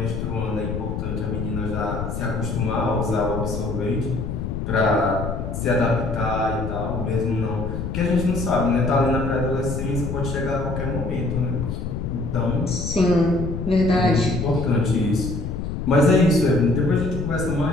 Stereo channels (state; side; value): noise; left; rumble, 4 dB below the sound